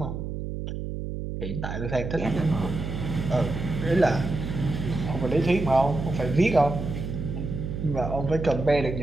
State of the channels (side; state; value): right; noise; hum, 5 dB below the sound